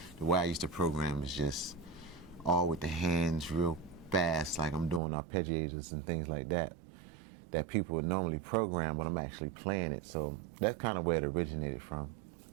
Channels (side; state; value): left; drops out; at 5.0 s